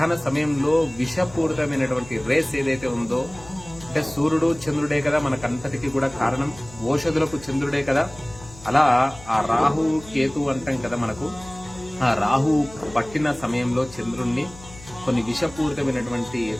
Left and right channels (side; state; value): left; noise; hum, 19 dB below the sound